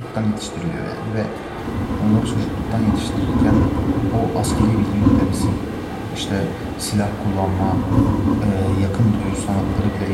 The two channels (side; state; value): both; identical; correlation 1.00